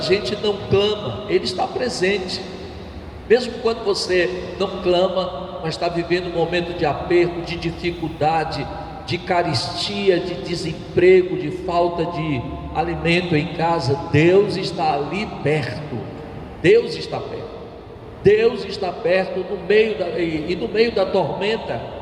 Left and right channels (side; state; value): both; identical; correlation 1.00